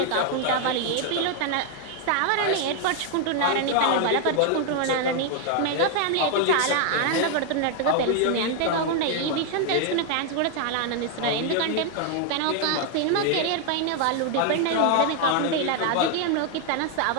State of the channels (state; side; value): different; both; correlation 0.00